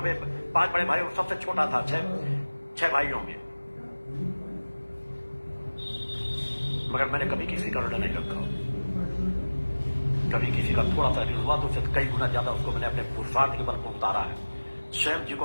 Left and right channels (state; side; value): inverted; both; correlation -1.00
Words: में, 5 बड़े भाइयों सबसे छोटा था, 6 भाइयों में, मगर मैंने कभी किसी का ऋण नहीं रखा। कभी किसी का थोड़ा सा ऋण हुआ तो उससे कई गुना ज्यादा उसको मैंने अपने पुरुषार्थ के बल पर उतारा है। स्वयं